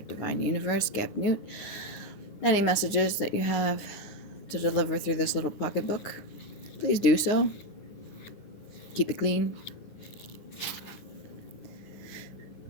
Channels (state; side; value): late; right; 9.6 ms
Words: universe, Gap Newt. Any messages that you have to deliver through this little pocketbook, please do so. Keep it clean.